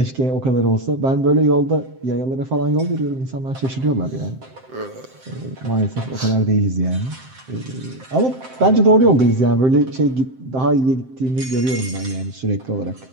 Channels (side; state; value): left; late; 7.7 ms